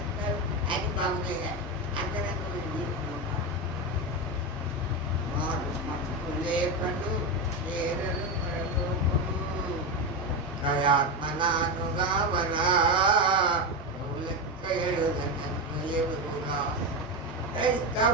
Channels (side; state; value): both; normal; correlation 0.15